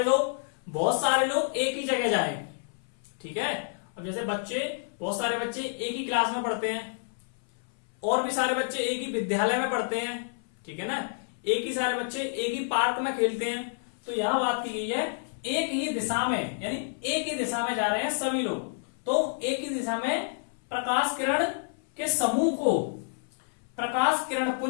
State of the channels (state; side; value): silent; right; 59 dB below the other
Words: बहुत सारे लोग एक ही जगह जाए, ठीक है। अब जैसे बच्चे, बहुत सारे बच्चे एक ही क्लास में पढ़ते हैं, और भी सारे बच्चे एक ही विद्यालय में पढ़ते हैं, ठीक है ना, एक ही सारे बच्चे एक ही पार्क में खेलते हैं। तो यहां बात की गई है एक ही दिशा में, यानी एक ही दिशा में जा रहे हैं सभी लोग, तो एक ही दिशा में प्रकाश किरण के समूह को प्रकाश किरण